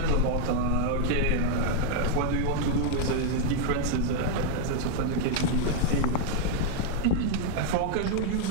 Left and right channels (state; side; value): different; both; correlation 0.00